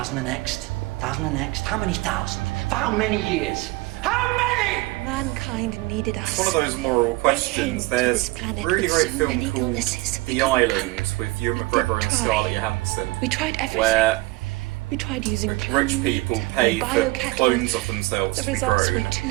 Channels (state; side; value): quieter; left; 21.5 dB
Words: the next. 1,000 the next. How many thousand? For how many years? How many? Mankind needed us. One of those moral questions. They came to There's this planet a really with great so film many called illnesses. The We couldn't Island cope. with Ewan We McGregor did and try. Scarlett Johansson, We tried everything. where We tried using rich cloning people and pay for biocattle. clones of themselves The to be results grown. were too